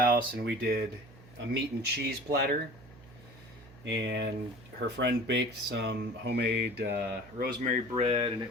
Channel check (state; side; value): noise; right; hum, 21 dB below the sound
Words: and we did a meat and cheese platter. And her friend baked some homemade rosemary bread, and it